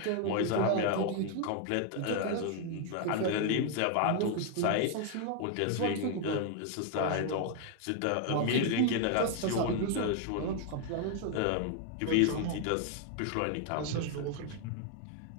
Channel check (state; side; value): different; both; correlation 0.00